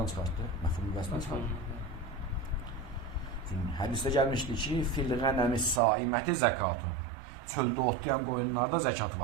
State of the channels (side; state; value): left; drops out; at 5.8 s